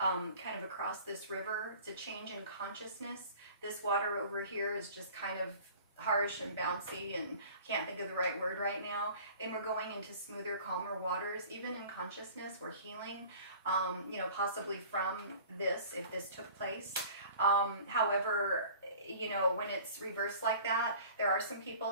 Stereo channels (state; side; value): inverted; both; correlation -0.45